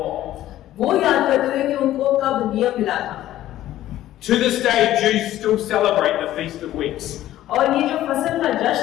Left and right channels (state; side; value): quieter; right; 13.7 dB